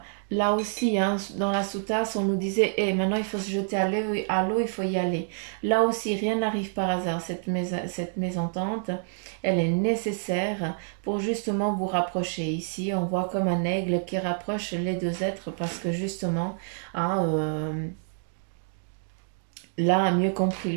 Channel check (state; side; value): silent; left; digital silence